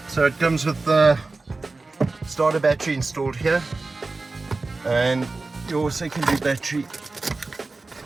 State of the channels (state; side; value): quieter; left; 3.6 dB